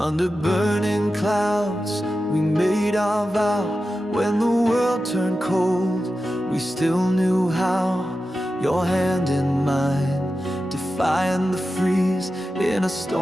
burning clouds, we made our vow. When the world turned cold, we still knew how. Your hand in mine, defying the freeze. In a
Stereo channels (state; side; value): normal; both; correlation 0.92